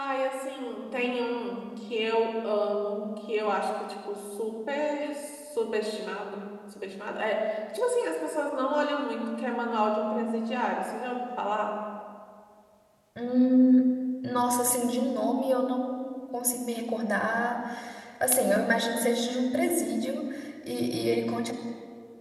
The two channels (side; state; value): both; identical; correlation 1.00